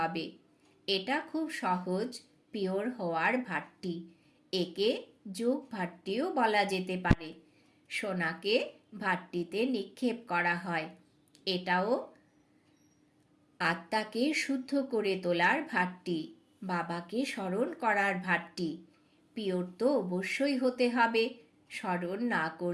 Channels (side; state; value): both; identical; correlation 1.00